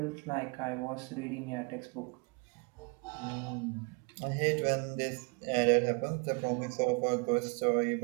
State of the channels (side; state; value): left; quieter; 32.7 dB